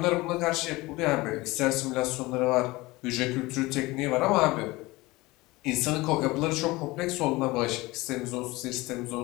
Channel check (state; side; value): quieter; right; 21.2 dB